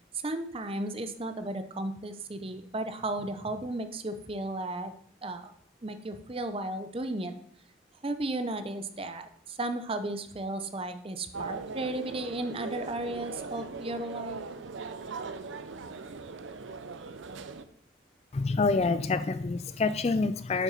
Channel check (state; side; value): normal; both; correlation 0.39